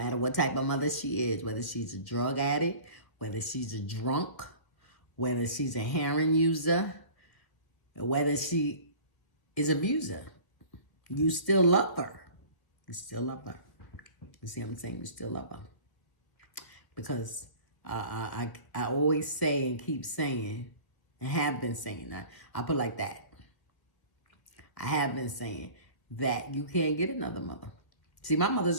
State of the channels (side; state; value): right; late; 1.5 ms